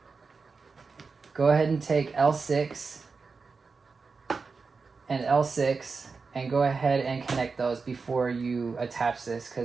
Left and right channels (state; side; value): quieter; left; 4.7 dB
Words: Go ahead and take L6 and L6 and go ahead and connect those before you attach this,